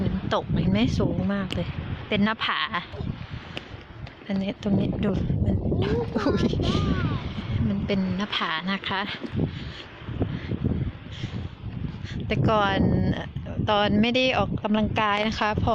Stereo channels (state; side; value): identical; both; correlation 1.00